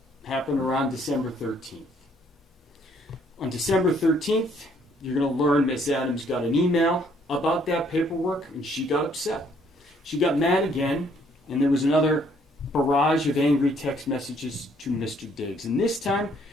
happened around December 13th. On December 13th, you're going to learn Miss Adams got an email about that paperwork, and she got upset. She got mad again, and there was another barrage of angry text messages to Mr. Diggs. And this time,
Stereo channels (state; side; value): normal; both; correlation 0.65